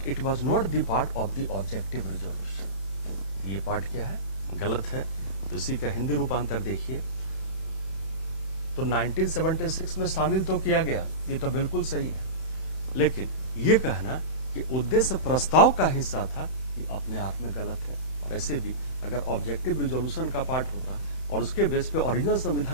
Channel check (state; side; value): late; right; 31 ms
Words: it was not the part of the objective resolution. ये पार्ट क्या है, गलत है। तो इसी का हिंदी रूपांतर देखिए। तो 1976 में शामिल तो किया गया, ये तो बिल्कुल सही है, लेकिन ये कहना कि उद्देश्य प्रस्ताव का हिस्सा था, ये अपने आप में गलत है। और ऐसे भी अगर ऑब्जेक्टिव रिजोल्यूशन का पार्ट होता और उसके बेस पे ओरिजिनल